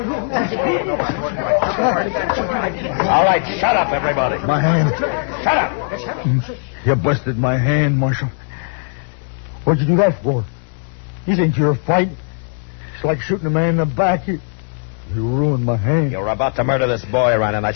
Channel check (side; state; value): right; silent; digital silence